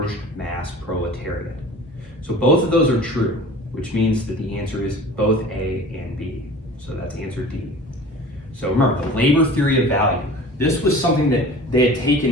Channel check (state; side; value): normal; both; correlation 0.41